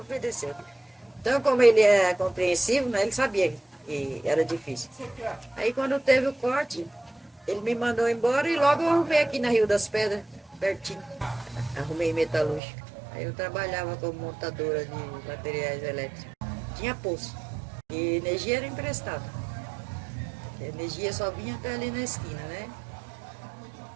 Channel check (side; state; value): left; drops out; at 12.6 s